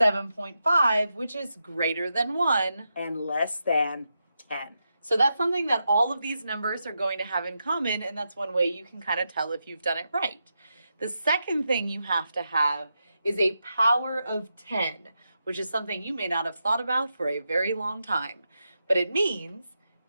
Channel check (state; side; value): inverted; both; correlation -0.86